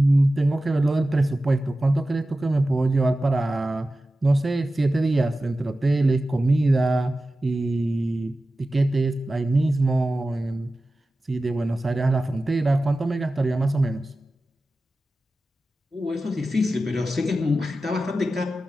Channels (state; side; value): normal; both; correlation 0.94